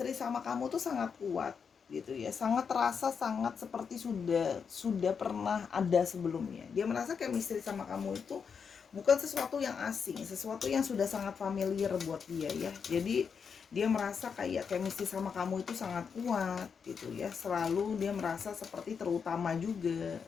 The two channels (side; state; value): right; quieter; 6.3 dB